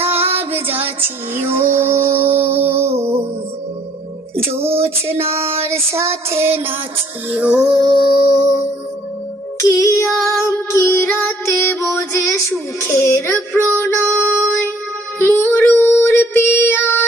যাচিও জোছনার সাথে নাচিও। কিয়াম কি রাতে বোঝে সুখের প্রণয়, মরুর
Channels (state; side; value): normal; both; correlation 0.62